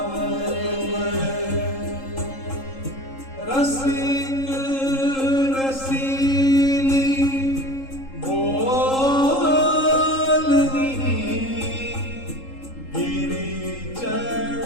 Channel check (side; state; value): right; late; 3.7 ms